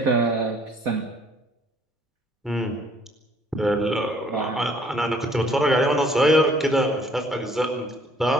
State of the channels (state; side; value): normal; both; correlation 0.60